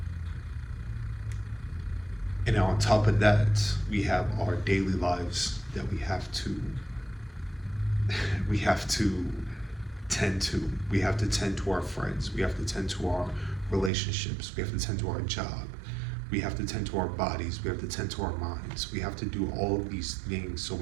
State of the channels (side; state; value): left; drops out; at 13.9 s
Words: And on top of that, we have our daily lives that we have to tend to. We have to tend to our friends. We have to tend to our relationships. We have to tend to our job. We have to tend to our bodies. We have to tend to our minds. We have to do all of these things. So